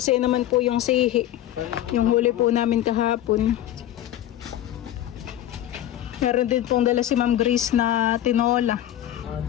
naman po yung sihi. Yung huli po namin kahapon. Meron din pong dala si Ma'am Grace na tinola.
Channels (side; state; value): right; quieter; 12.6 dB